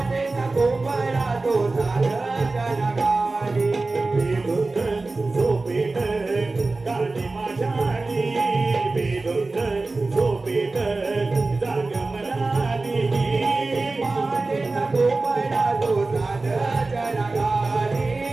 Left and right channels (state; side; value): quieter; left; 3.5 dB